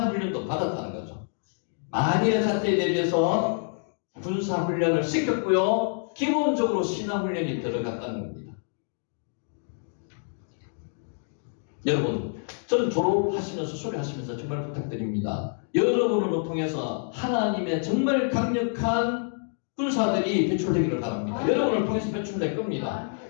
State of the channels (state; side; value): silent; right; digital silence